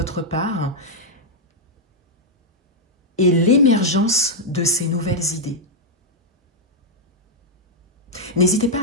part et l'émergence de ces nouvelles idées. N'hésitez pas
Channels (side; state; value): both; normal; correlation -0.03